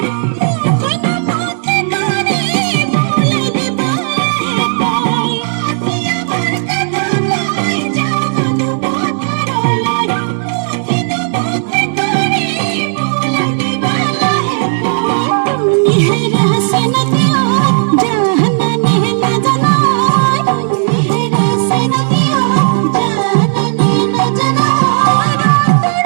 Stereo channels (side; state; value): left; silent; 67 dB below the other